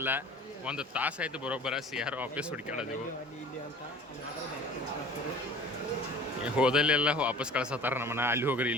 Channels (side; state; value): both; normal; correlation 0.44